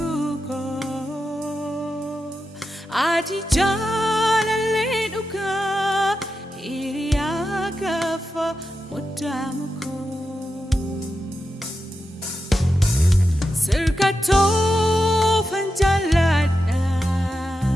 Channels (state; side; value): normal; both; correlation 0.89